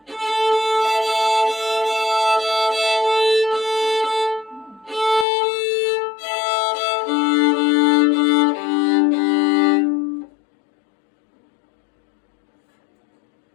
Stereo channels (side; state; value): right; drops out; at 5.2 s